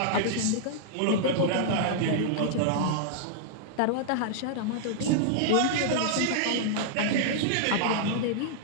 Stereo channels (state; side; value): different; both; correlation -0.01